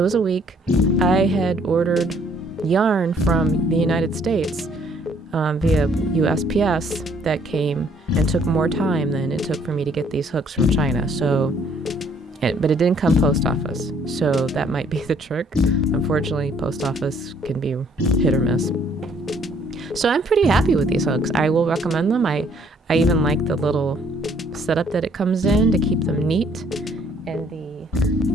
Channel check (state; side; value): normal; both; correlation 0.63